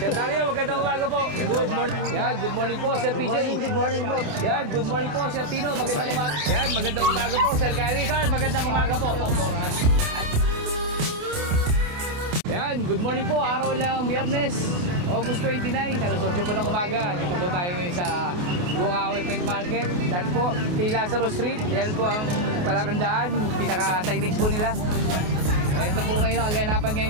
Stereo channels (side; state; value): left; late; 28 ms